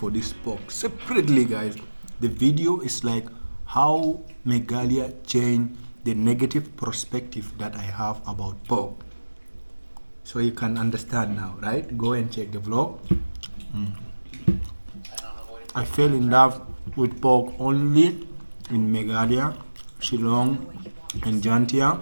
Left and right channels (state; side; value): inverted; both; correlation -1.00